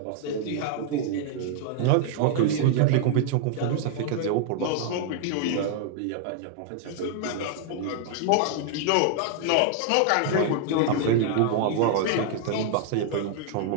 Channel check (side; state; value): both; different; correlation 0.00